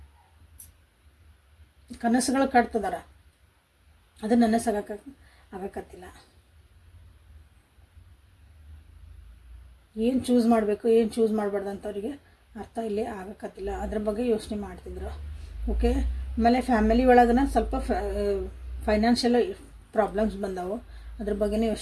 ಕನಸುಗಳು ಕಟ್ತದಾರ, ಅದು ಆಗಕತ್ತಿಲ್ಲ. ಏನು ಚೂಸ್ ಮಾಡಬೇಕು, ಏನು ಚೂಸ್ ಮಾಡಬಾರ್ದು ಅಂತ ಅವರಿಗೆ ಅರ್ಥ ಇಲ್ಲಿ ಆಗಕತ್ತಿಲ್ಲ. ಅದ್ರ ಬಗ್ಗೆ ಯೋಚನೆ ಮಾಡ್ತಿದ್ರು. ಓಕೆ, ಆಮೇಲೆ ಫ್ಯಾಮಿಲಿ ಒಳಗನ ಸ್ವಲ್ಪ ಫೈನಾನ್ಷಿಯಲ್ ಪ್ರಾಬ್ಲಮ್ಸ್ ಬಂದವು, ಅದ್ರ ಬಗ್ಗೆನೇ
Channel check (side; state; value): both; identical; correlation 1.00